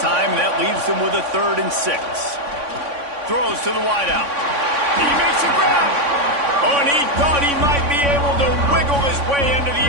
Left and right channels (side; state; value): left; late; 3.5 ms